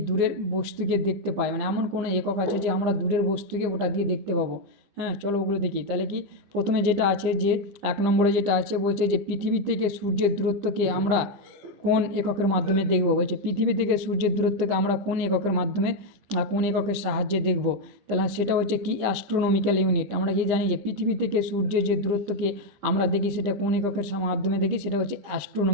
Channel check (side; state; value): left; late; 15 ms